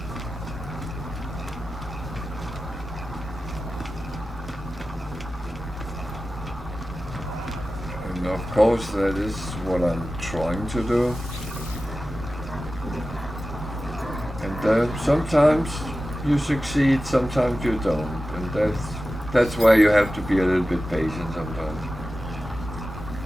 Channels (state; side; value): normal; both; correlation 0.94